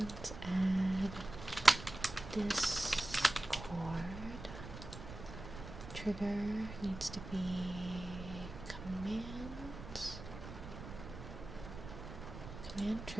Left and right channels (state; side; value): noise; right; rumble, 11 dB below the sound